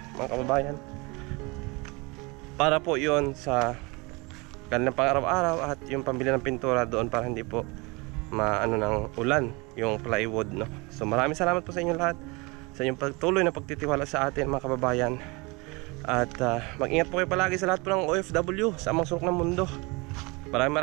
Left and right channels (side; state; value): left; quieter; 26.8 dB